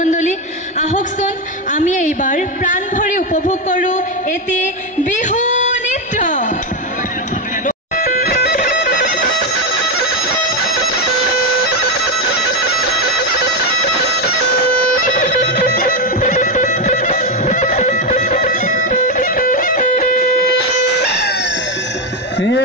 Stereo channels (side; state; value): both; normal; correlation 0.08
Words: আহকচোন আমি এইবাৰ প্ৰাণ ভৰি উপভোগ কৰোঁ এটি বিহু নৃত্য।